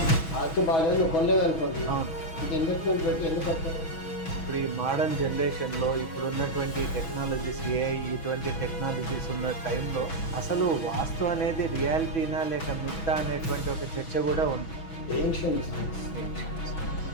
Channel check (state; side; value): late; right; 6.2 ms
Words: వాస్తు బాగాలేదు, కొనలేదు అనుకోండి, ఇది ఇన్వెస్ట్మెంట్ పెట్టి ఎందుకు కట్టారు? ఇప్పుడు ఈ మోడర్న్ జనరేషన్లో ఇప్పుడు ఉన్నటువంటి టెక్నాలజీస్, ఏఐ ఇటువంటి టెక్నాలజీస్ ఉన్న టైంలో అసలు వాస్తు అనేది రియాలిటీనా లేక మిథ్యా అనేటువంటి ఒక చర్చ కూడా ఉంది. Ancient science,